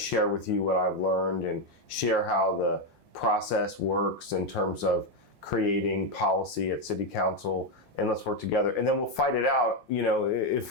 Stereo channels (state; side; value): normal; both; correlation 0.06